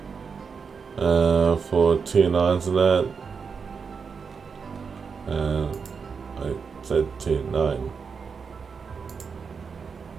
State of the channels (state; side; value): quieter; left; 5.7 dB